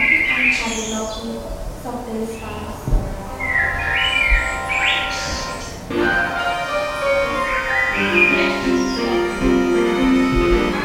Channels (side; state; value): both; identical; correlation 1.00